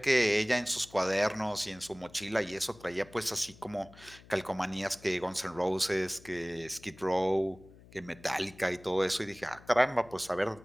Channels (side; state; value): left; noise; hum, 22 dB below the sound